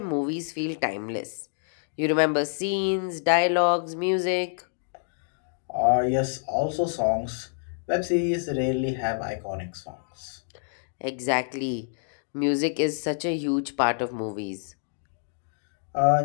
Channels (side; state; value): right; silent; digital silence